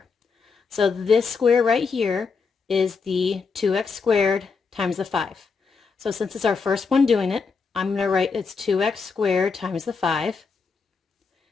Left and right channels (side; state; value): right; quieter; 5.1 dB